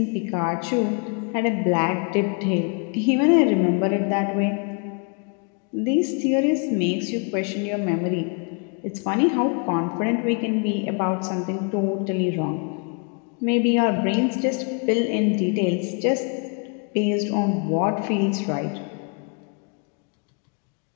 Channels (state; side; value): quieter; right; 36.7 dB